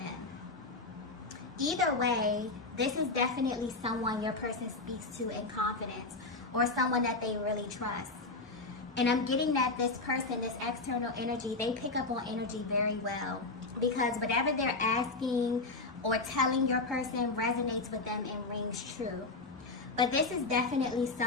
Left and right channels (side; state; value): right; quieter; 3.4 dB